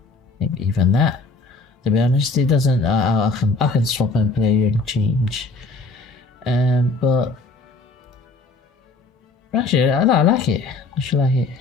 maybe even that. To be honest, it doesn't. I can swap and play and change. But actually, I like it. I should like it.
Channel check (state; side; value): quieter; right; 3.7 dB